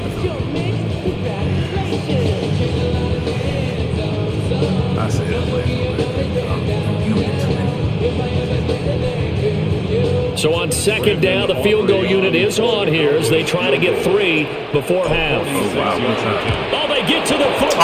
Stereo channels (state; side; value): identical; both; correlation 1.00